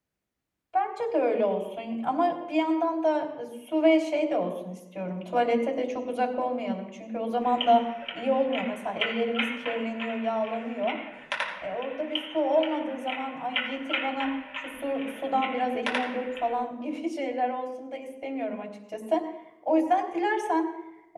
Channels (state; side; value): identical; both; correlation 1.00